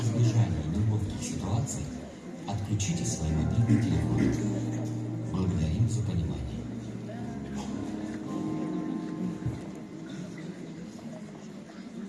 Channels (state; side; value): identical; both; correlation 1.00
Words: неловких ситуаций отключите свои мобильные телефоны. Благодарим за понимание.